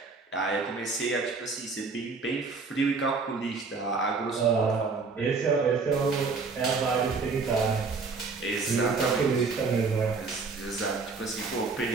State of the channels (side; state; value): left; quieter; 4.5 dB